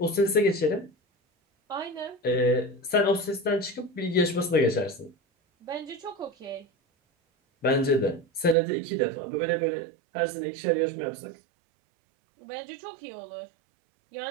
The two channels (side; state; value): left; drops out; at 8.6 s